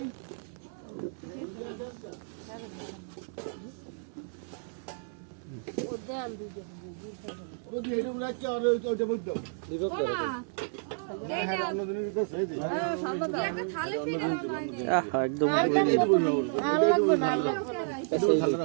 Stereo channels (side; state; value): left; silent; 57 dB below the other